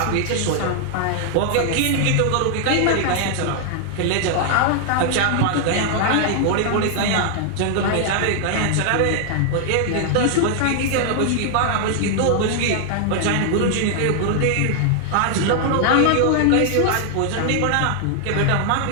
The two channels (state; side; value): different; both; correlation 0.00